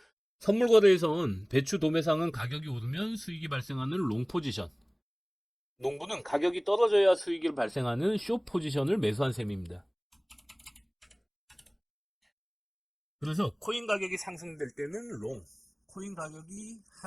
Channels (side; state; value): both; identical; correlation 1.00